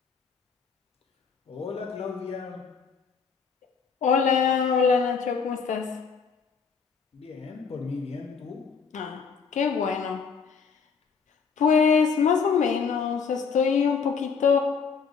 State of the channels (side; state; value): right; quieter; 5.8 dB